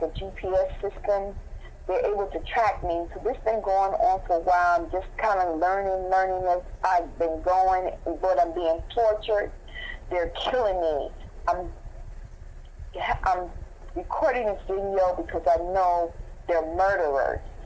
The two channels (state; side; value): identical; both; correlation 1.00